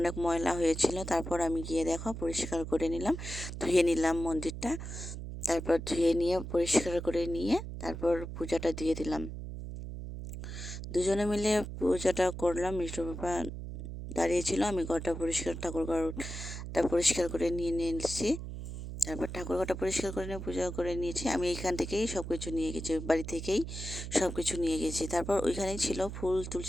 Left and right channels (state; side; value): noise; right; hum, 8 dB below the sound